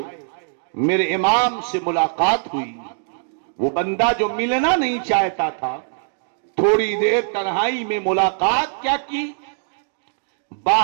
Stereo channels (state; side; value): silent; left; digital silence